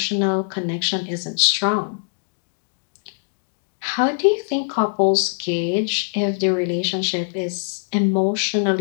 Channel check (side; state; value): right; silent; digital silence